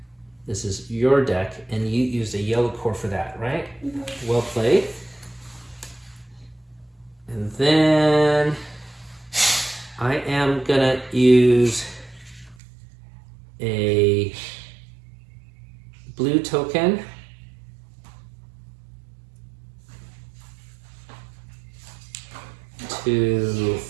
This is your deck, and you used a yellow core for that, right? Mm-hmm. Well played. And then I am gonna use a blue token to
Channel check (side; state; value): left; drops out; at 12.6 s